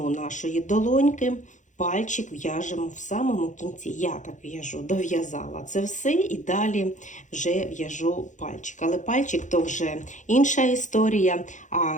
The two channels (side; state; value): right; late; 0.36 ms